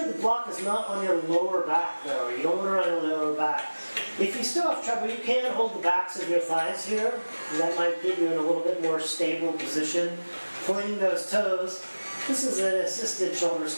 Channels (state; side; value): inverted; both; correlation -1.00